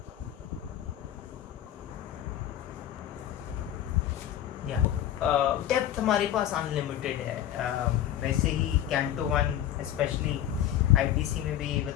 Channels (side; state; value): right; quieter; 11.5 dB